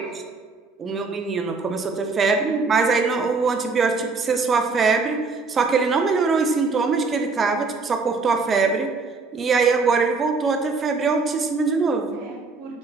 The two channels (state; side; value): quieter; left; 4.3 dB